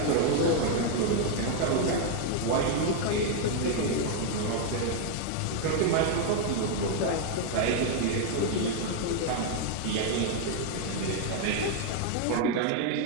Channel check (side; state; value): both; different; correlation 0.01